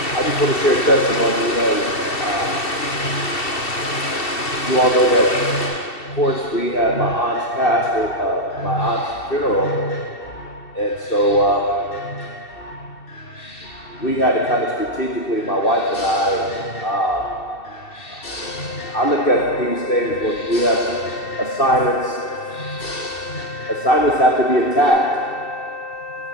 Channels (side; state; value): right; late; 2.7 ms